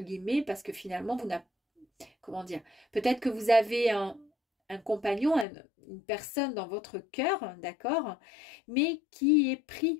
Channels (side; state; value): right; drops out; at 5.5 s